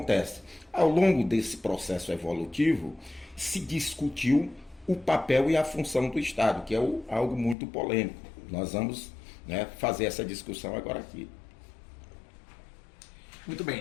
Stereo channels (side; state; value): right; drops out; at 7.6 s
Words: Ao longo desse processo evolutivo, se discutiu o papel e a função do Estado, que é algo muito polêmico. Nós vamos, né, fazer essa discussão agora aqui. Muito